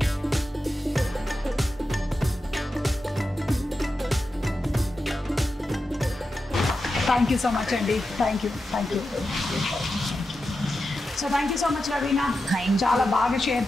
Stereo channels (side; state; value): both; normal; correlation 0.90